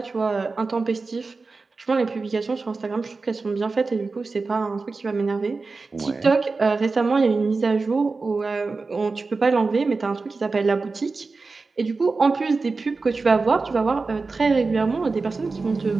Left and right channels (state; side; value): quieter; left; 4.0 dB